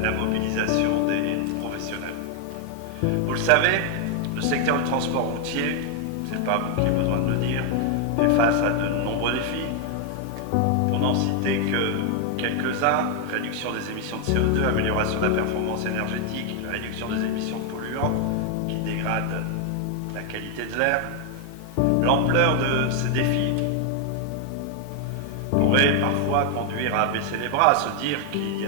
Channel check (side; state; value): both; different; correlation 0.00